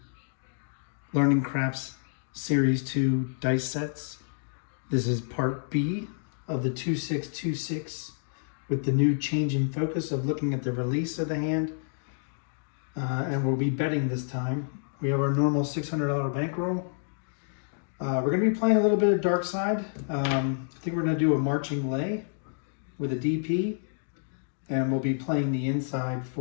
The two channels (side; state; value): right; silent; digital silence